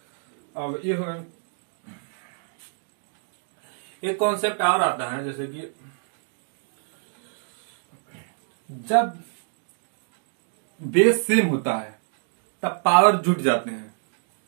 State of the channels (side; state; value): left; silent; digital silence